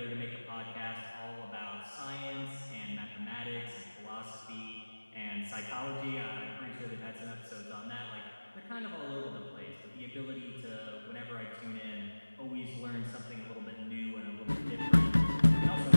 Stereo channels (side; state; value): both; inverted; correlation -1.00